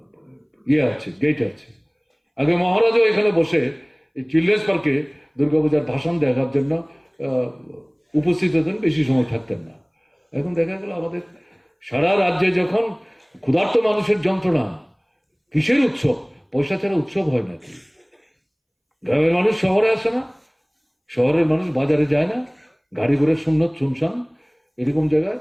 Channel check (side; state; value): both; identical; correlation 1.00